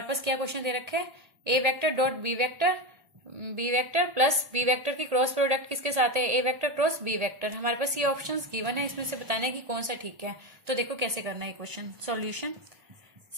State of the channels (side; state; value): left; late; 1.8 ms